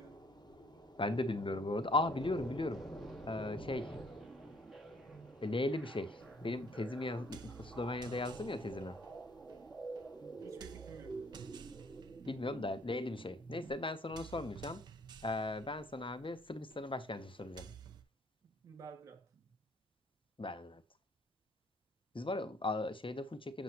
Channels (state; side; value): normal; both; correlation 0.62